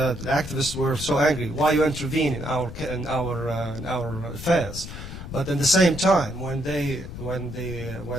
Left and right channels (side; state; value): left; noise; rumble, 10 dB below the sound